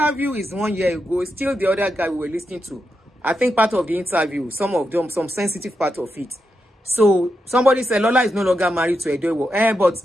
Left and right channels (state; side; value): normal; both; correlation 0.86